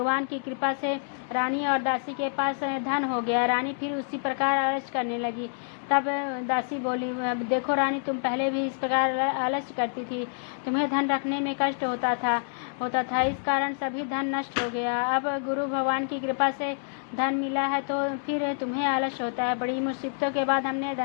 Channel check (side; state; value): right; silent; digital silence